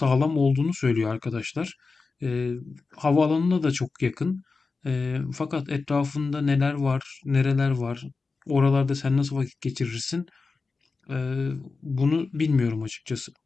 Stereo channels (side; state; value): right; quieter; 4.2 dB